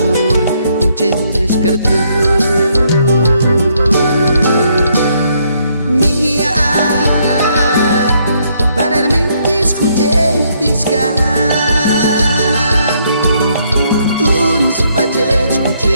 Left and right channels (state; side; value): inverted; both; correlation -0.71